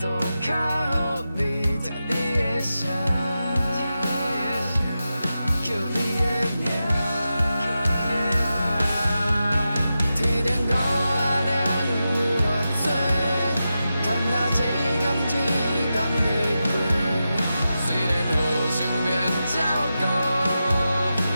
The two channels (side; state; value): both; inverted; correlation -0.91